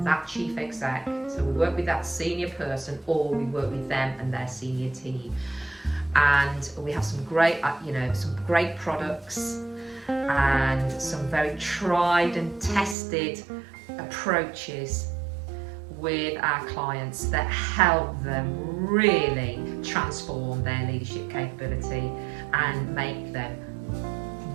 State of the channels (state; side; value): drops out; left; at 13.0 s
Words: that chief exec. So we work with that senior person, or we work with them and their senior team. And we have some great products and some very tried and tested approaches with our clients that help them really transform their leadership capability and make them